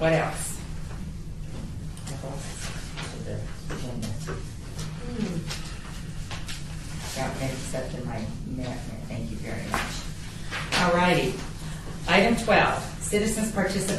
else? Got mixed up in my minute. Thank you very much. All righty. Item 12, citizens'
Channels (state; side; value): identical; both; correlation 1.00